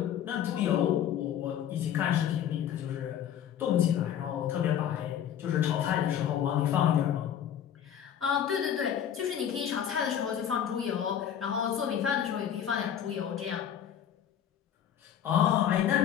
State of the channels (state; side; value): quieter; right; 9.6 dB